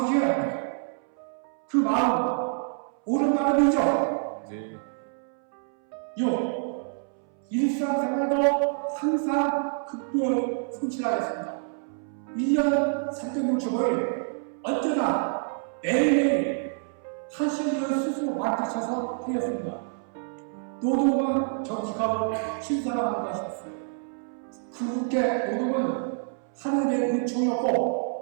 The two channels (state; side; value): silent; left; 60 dB below the other